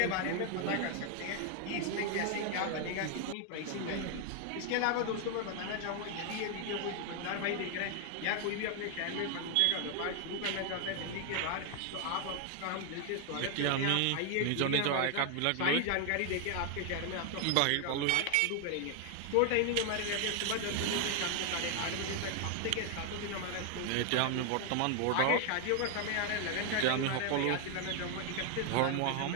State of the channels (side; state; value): both; different; correlation 0.00